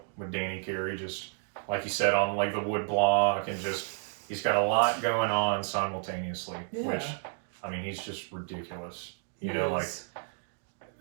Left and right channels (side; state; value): left; silent; 57 dB below the other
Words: with Danny Carey, just like you said, on like the wood block, and just he's got a lot going on simultaneously, which, I mean, he's just ridiculous. You know, like